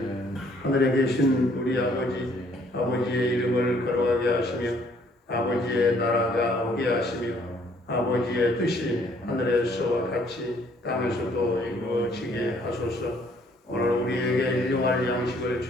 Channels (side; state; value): both; normal; correlation 0.63